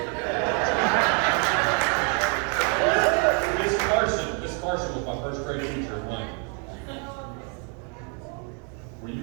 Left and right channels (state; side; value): quieter; left; 39.2 dB